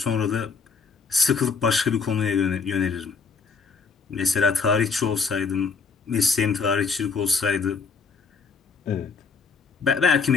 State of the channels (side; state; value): right; quieter; 5.0 dB